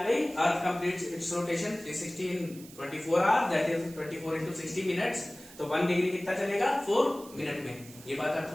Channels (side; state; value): right; noise; hiss, 19 dB below the sound